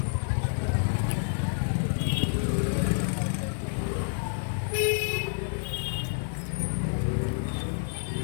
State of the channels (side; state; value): right; silent; 59 dB below the other